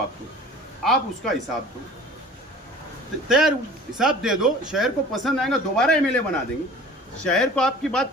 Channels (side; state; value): both; normal; correlation 0.44